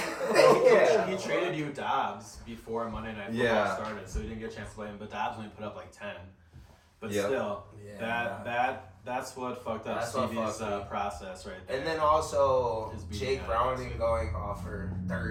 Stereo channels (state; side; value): identical; both; correlation 1.00